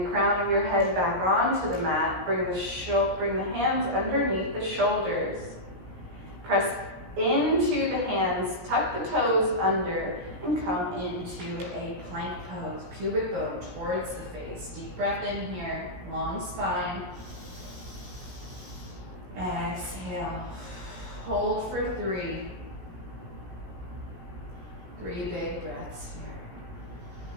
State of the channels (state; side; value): late; left; 17 ms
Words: the crown of your head back onto the mat. Bring the hands underneath the shoulders. Press into the hands, tuck the toes under, and come into a plank pose. Pubic bone towards the face. Deep breath in here, long spine. Exhale. Hold for 3. 3 big breaths here.